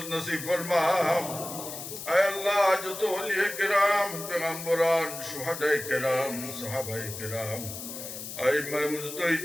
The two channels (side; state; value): left; noise; hiss, 9 dB below the sound